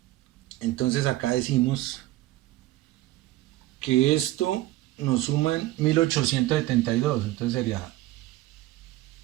Entonces acá decimos que esto nos suman 1872. Entonces sería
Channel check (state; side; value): quieter; left; 16.6 dB